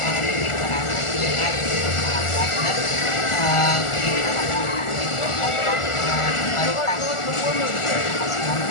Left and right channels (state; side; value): late; right; 1.4 ms